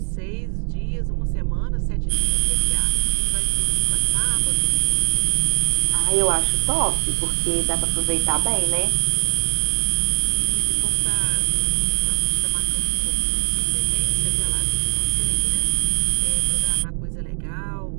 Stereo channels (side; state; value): left; silent; digital silence